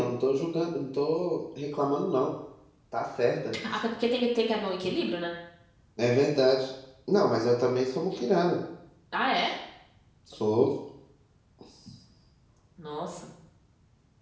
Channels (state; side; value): identical; both; correlation 1.00